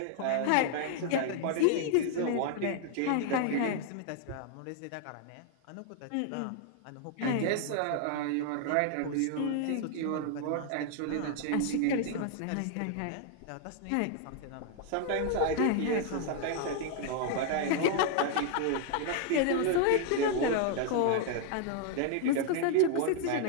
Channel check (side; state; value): both; different; correlation 0.00